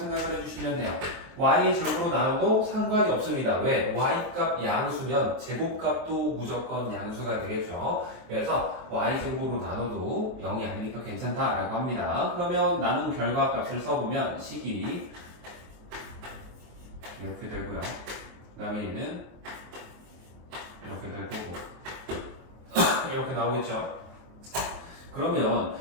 해주시면 돼요. y의 제곱으로 나눠도 상관이 없습니다. 왜? y값 양수면 제곱값도 무조건 양수가 되겠죠. 그래서 y제곱으로 나눠도 0이 아니니까 괜찮다라고 합니다. 그러면 나눈 결과값을 써보면 식이 이렇게 되고요. 그 다음에 얘는 이렇게 될 거고 이렇게 나오겠죠. 그러면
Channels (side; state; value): left; late; 23 ms